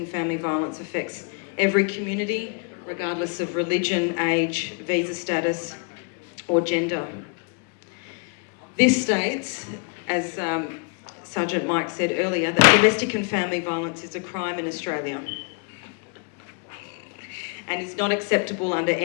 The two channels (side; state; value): right; quieter; 37.1 dB